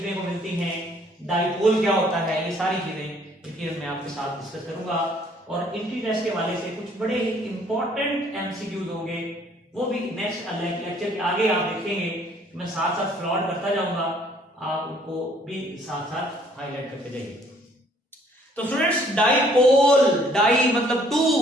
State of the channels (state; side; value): normal; both; correlation 0.61